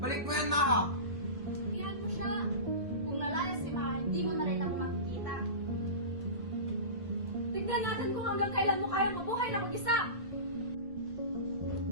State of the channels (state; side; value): late; left; 1.5 ms